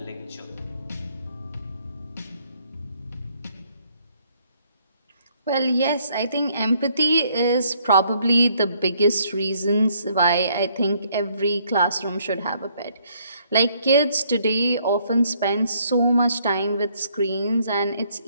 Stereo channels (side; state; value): both; inverted; correlation -0.67